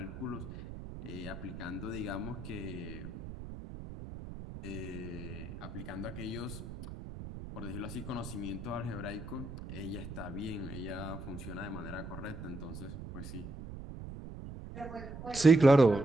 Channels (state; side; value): noise; right; rumble, 10 dB below the sound